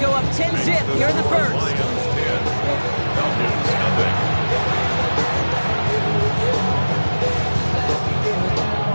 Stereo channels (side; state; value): both; inverted; correlation -1.00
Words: up 10-zip here in the 1st.